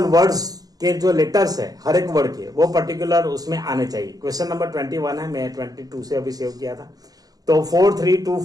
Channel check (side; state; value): left; late; 0.18 ms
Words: वर्ड्स के जो लेटर्स है हर एक वर्ड के, वो पर्टिकुलर उसमें आने चाहिए। क्वेश्चन नंबर 21 है, मैं 22 से अभी सेव किया था। तो